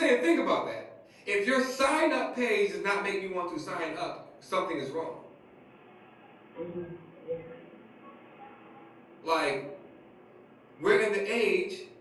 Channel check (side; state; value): both; identical; correlation 1.00